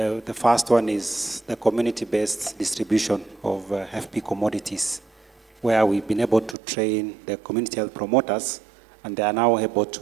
first one is the community-based distribution of FP commodities, where we've been able to train the community health promoters, and they are now able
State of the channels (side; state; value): left; drops out; at 6.6 s